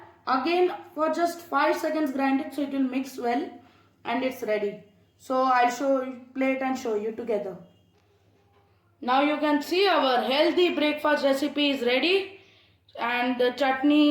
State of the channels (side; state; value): both; identical; correlation 1.00